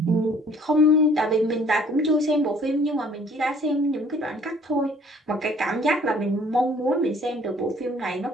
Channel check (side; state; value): both; normal; correlation 0.56